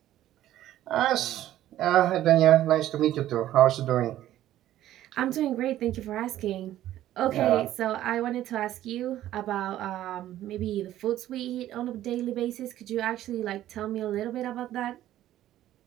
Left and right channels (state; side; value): quieter; left; 13.2 dB